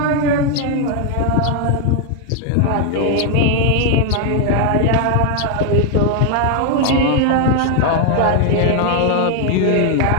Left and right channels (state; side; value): different; both; correlation 0.00